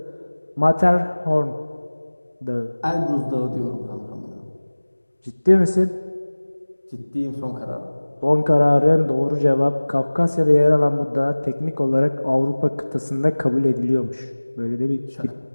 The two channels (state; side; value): inverted; both; correlation -1.00